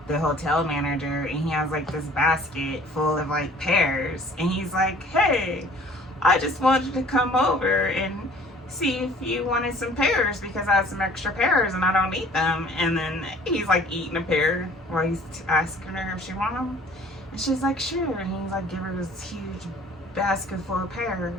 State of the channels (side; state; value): both; normal; correlation 0.52